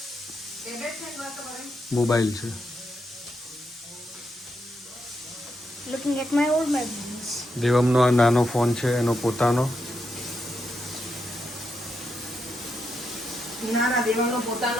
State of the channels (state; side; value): normal; both; correlation 0.82